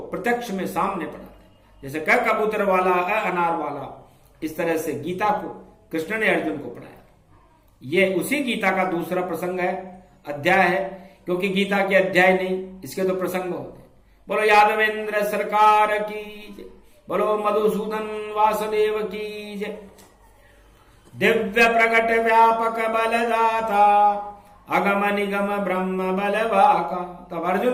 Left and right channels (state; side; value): identical; both; correlation 1.00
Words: प्रत्यक्ष में सामने पढ़ाते हैं। जैसे क कबूतर वाला, अ अनार वाला, इस तरह से गीता को कृष्ण ने अर्जुन को पढ़ाया। ये उसी गीता का दूसरा प्रसंग है, अध्याय है, क्योंकि गीता के अध्याय नहीं, इसके तो प्रसंग होते हैं। बोलो यादवेंद्र सरकार की जय, बोलो मधुसूदन वासुदेव की जय। दिव्य प्रकट व्यापक बलदाता, अगम निगम ब्रह्म बलवाका। तब